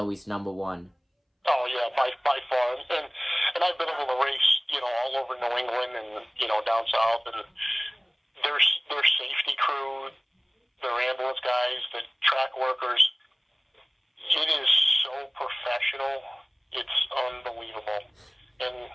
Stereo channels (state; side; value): identical; both; correlation 1.00